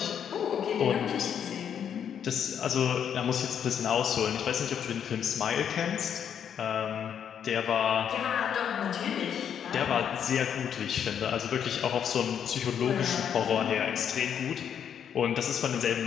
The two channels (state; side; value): quieter; right; 8.5 dB